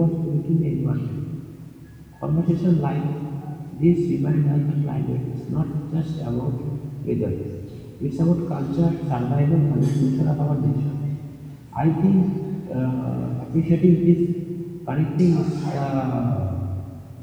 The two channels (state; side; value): identical; both; correlation 1.00